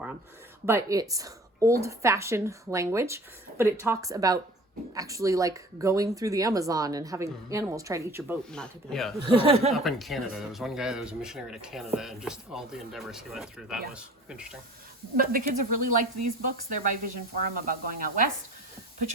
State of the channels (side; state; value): both; normal; correlation 0.45